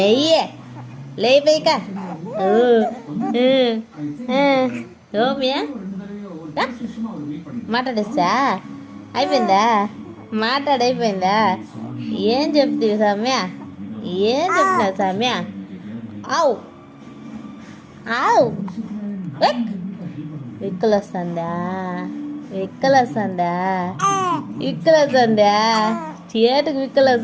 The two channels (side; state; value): both; identical; correlation 1.00